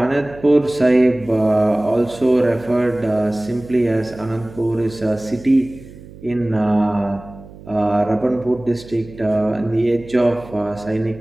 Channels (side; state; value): right; noise; hum, 18 dB below the sound